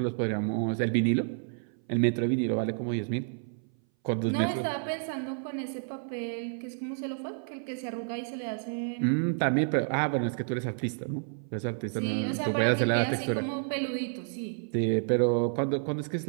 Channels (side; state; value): left; silent; 58 dB below the other